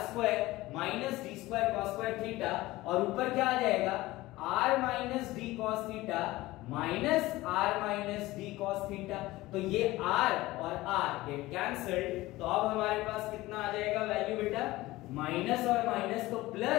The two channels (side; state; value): right; quieter; 18.5 dB